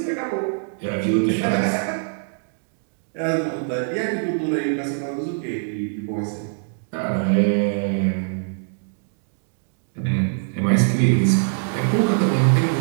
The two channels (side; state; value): left; silent; digital silence